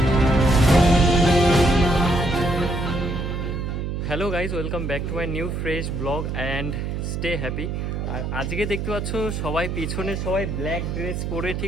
Hello guys, welcome back to my new fresh blog and stay happy. আর আজকে দেখতে পাচ্ছ সবাই পিছনে সবাই ব্ল্যাক ড্রেস পরে,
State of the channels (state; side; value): noise; right; hum, 3 dB below the sound